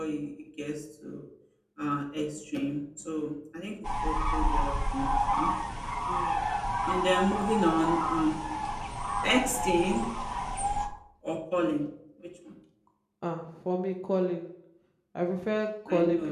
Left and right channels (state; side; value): identical; both; correlation 1.00